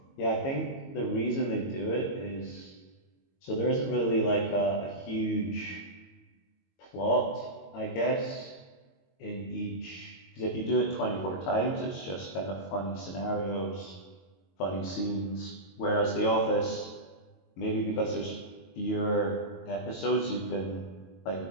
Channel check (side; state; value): right; late; 22 ms